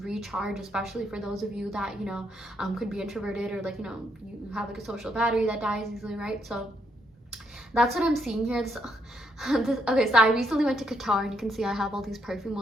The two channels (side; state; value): both; normal; correlation 0.76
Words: recharge, especially for those of you that, you know, could be introverted, or like, you know, you have like a social battery that dies easily, right? So that's what I'm seeing here. Okay, so I recently went to Qatar, and you can see I have all these perfume